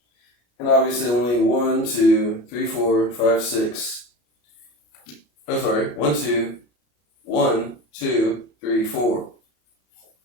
And obviously only 1, 2, 3, 4, 5, 6. Oh, sorry. 1, 2, 3, 4.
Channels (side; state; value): right; late; 33 ms